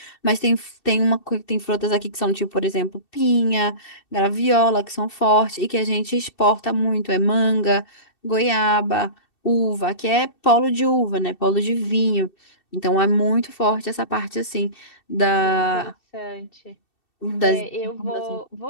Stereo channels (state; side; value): late; right; 2.7 ms